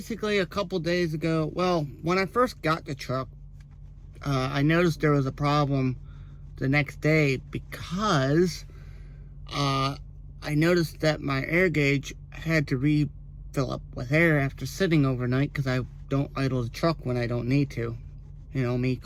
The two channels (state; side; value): identical; both; correlation 1.00